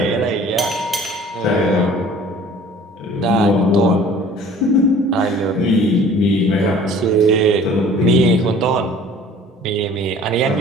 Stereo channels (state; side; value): normal; both; correlation 0.49